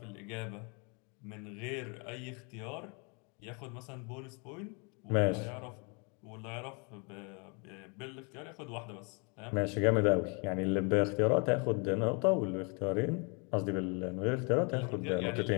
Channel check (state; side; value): quieter; right; 33.9 dB